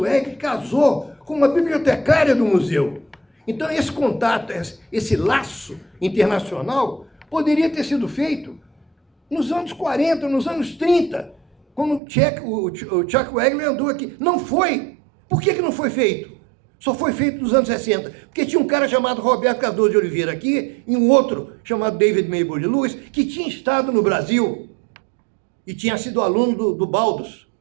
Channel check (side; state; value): left; drops out; at 12.0 s